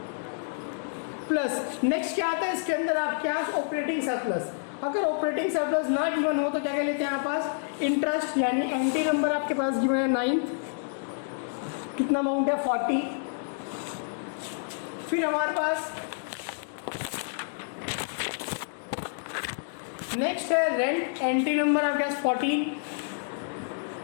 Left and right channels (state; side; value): silent; right; digital silence